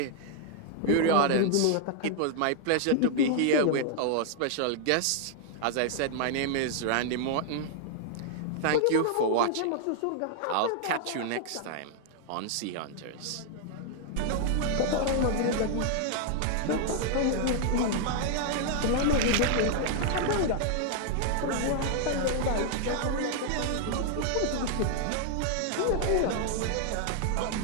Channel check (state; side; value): different; both; correlation 0.00